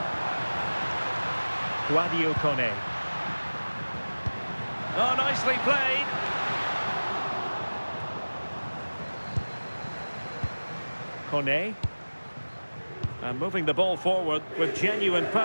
Guadio Kone. Oh, nicely played. Kone. And moving the ball forward with genuine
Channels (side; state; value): both; inverted; correlation -1.00